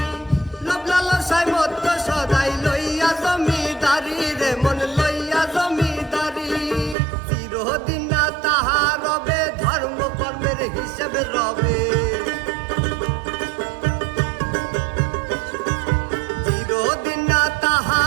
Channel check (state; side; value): drops out; left; at 7.0 s